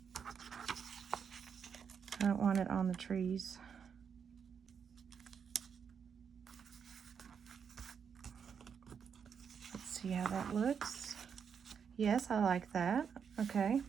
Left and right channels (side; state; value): left; quieter; 6.9 dB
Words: I don't want it on the trees. see how that looks. Yes, I like that. Okay.